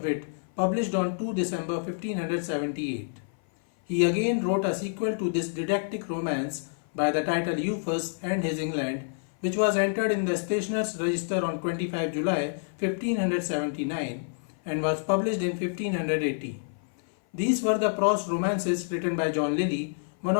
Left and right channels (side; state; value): right; silent; 57 dB below the other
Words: Wit, published on 2 December 1578. He again wrote a sequel to this didactic romance by the title Euphues and His England, which was entered in the Stationers' Register on 25 July 1579 and was published in 1580. These were the prose romances written by John Lyly, one